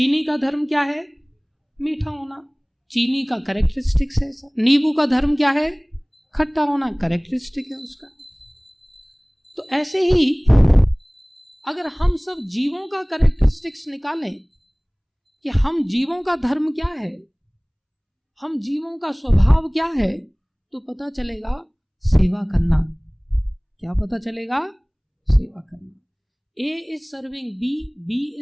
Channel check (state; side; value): identical; both; correlation 1.00